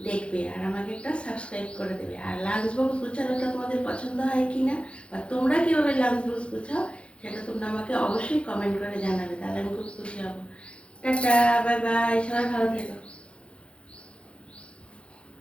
দেখবে আর আমাকে একটা সাবস্ক্রাইব করে দেবে। আর লাঞ্চ বক্স গুছানোটা তোমাদের পছন্দ হয় কি না, বা তোমরা কীভাবে লাঞ্চ বক্স গুছাও, সেটা তোমরা আমাকে অবশ্যই কমেন্ট করে জানাবে, তাহলে আমি খুব খুশি হব। টাটা, বাই বাই, সবাই ভালো থেকো।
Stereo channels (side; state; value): right; late; 0.059 ms